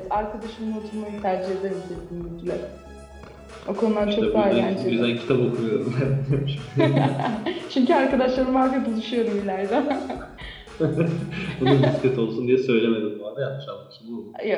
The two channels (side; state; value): both; identical; correlation 1.00